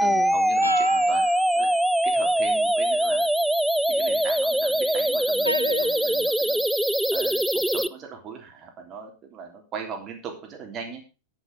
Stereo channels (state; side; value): normal; both; correlation 0.90